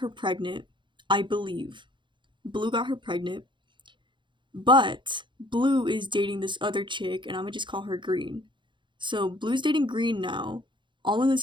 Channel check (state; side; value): late; left; 0.23 ms